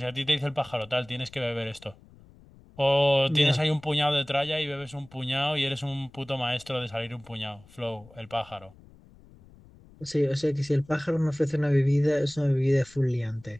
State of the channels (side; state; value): left; noise; rumble, 24 dB below the sound